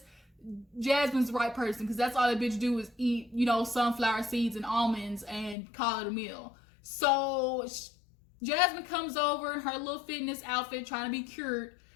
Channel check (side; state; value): right; drops out; at 5.6 s